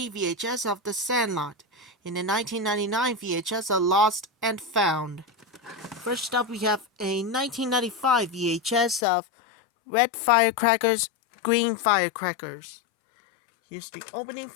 VHS of The Sandlot. In the 1999 VHS of Lost and Found. First up, we have a 1995 VHS of red firecrackers, green firecrackers. Here's the opening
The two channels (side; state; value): right; drops out; at 9.1 s